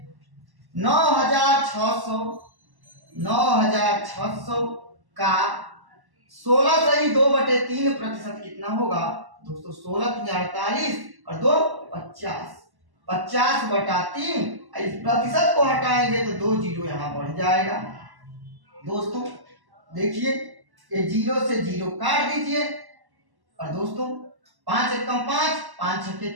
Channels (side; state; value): left; late; 1.1 ms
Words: 9600 का 16 सही 2/3% कितना होगा। दोस्तों 16 × 48 और 2 50, 50/3। इस प्रतिशत को हटाएंगे तो 2 जीरो यहां बढ़ जाएगा। दोस्तों देखिए, ये जीरो से जीरो काट दीजिए, और दोस्तों 5 1 कम 5, 5 6 के